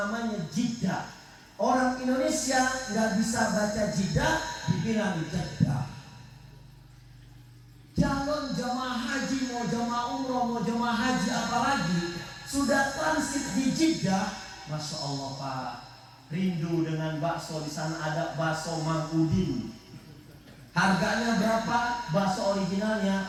Jeddah. Orang Indonesia nggak bisa baca Jeddah, dibilang Jeddah. Calon jemaah haji, mau jemaah umroh, mau jemaah haji apalagi, sudah transit di Jeddah, Masya Allah Pak, rindu dengan bakso. Di sana ada bakso Mang Udin. Harganya berapa? Bakso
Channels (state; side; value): identical; both; correlation 1.00